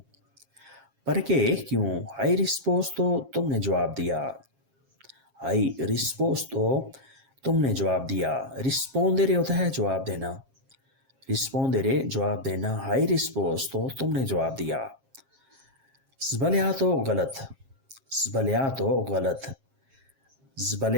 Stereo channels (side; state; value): left; late; 7.5 ms